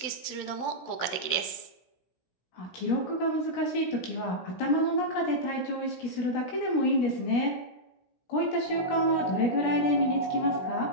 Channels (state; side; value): late; right; 16 ms